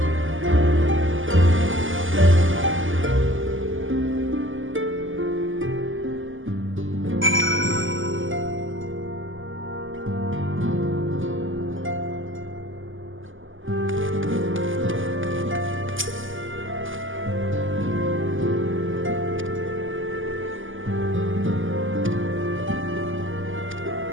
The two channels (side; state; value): left; late; 0.58 ms